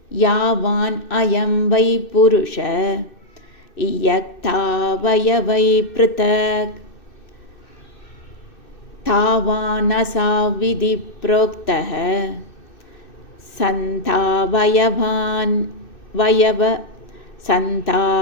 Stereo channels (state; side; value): late; right; 2.6 ms